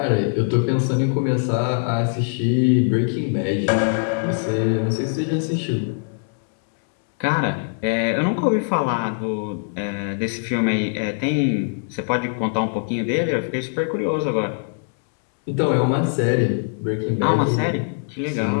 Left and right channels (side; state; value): right; silent; 64 dB below the other